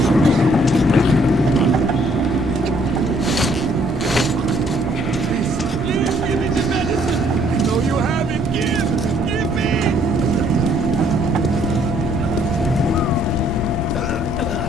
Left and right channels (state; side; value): normal; both; correlation 0.64